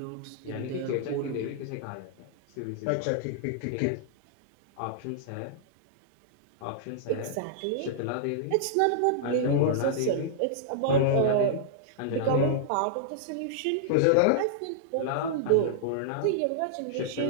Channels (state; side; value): different; both; correlation -0.01